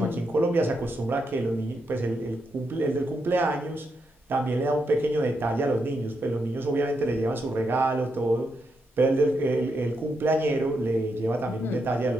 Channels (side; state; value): both; normal; correlation 0.82